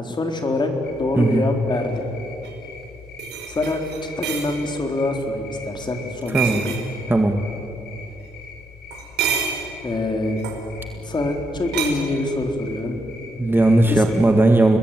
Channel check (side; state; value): both; normal; correlation 0.79